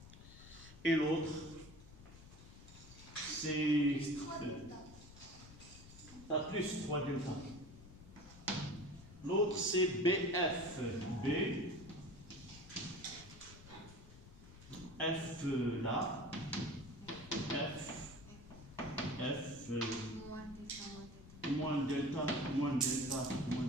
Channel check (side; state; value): left; noise; rumble, 17 dB below the sound